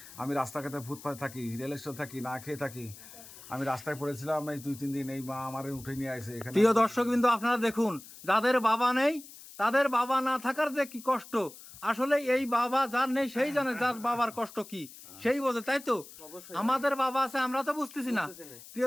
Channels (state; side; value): noise; left; hiss, 17 dB below the sound